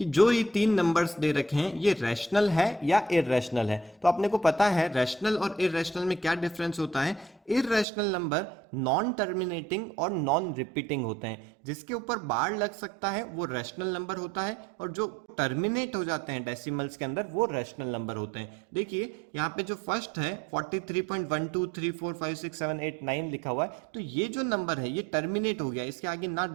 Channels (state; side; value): drops out; left; at 7.9 s